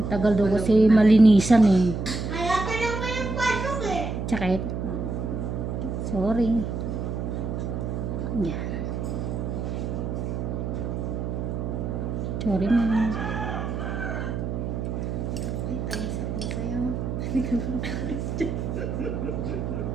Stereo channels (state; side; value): noise; right; hum, 3 dB below the sound